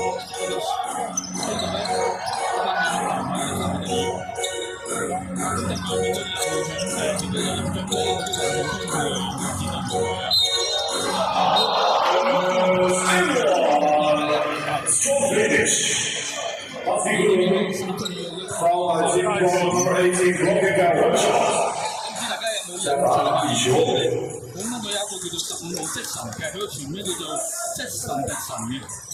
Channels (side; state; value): both; identical; correlation 1.00